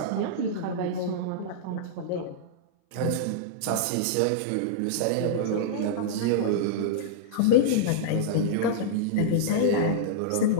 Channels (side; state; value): both; different; correlation -0.02